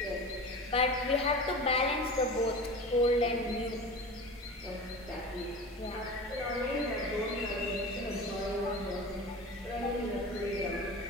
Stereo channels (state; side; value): normal; both; correlation 0.33